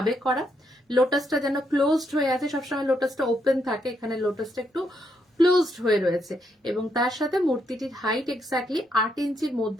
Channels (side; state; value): both; normal; correlation 0.77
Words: করা। লোটাসটা যেন ক্লোজড হয়ে আছে, সবসময় লোটাসটা ওপেন থাকে, এখানে লোটাসটা একটু ক্লোজড হয়ে রয়েছে। এবং তার সাথে মূর্তিটির হাইট এক্স্যাক্টলি 8 ইঞ্চির